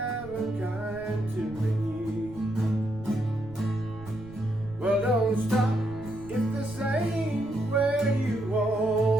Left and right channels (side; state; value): right; noise; rumble, 17 dB below the sound